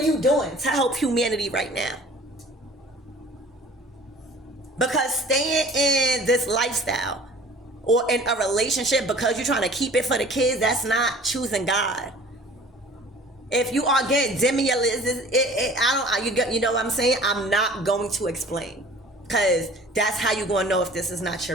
you doing to help humanity right now? Because staying in this lifestyle or in a relationship because you're trying to keep it for the kids, that's not choosing God. If you are getting you know what I'm saying? I'm not going to explain, because that's how you're going to know if this is not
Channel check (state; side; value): normal; both; correlation 0.48